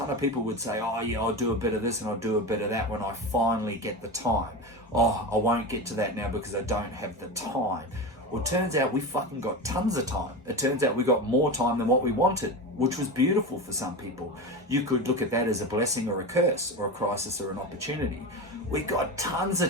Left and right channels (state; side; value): normal; both; correlation 0.23